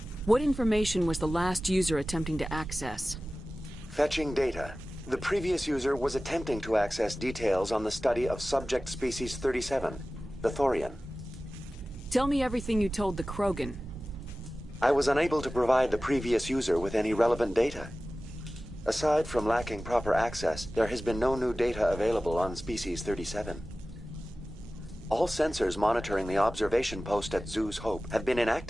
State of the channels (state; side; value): normal; both; correlation 0.96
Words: What information was the last user attempting to access? Fetching data. The previous user was attempting to access details on the study of subject species 37, the Thorian. Tell me everything you told the Krogan. I was unable to provide the previous user with any relevant data. Aside from lacking proper access, there has been no new data available on species 37. All sensors monitoring the observation post at Zoo's Hope have been